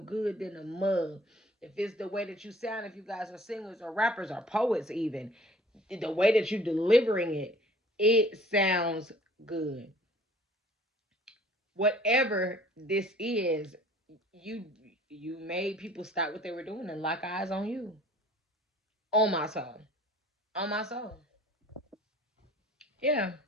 than a mug. If it's the way that you sound, if you guys are singers or rappers or poets even, the way that you're delivering it, it sounds good. Whatever this is, you you made people stop what they were doing and lock eyes on you. On my soul. On my soul. Yeah.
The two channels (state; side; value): normal; both; correlation 0.52